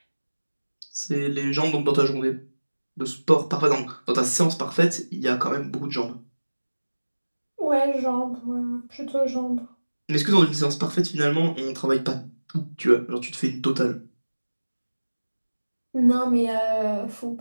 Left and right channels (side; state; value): both; inverted; correlation -1.00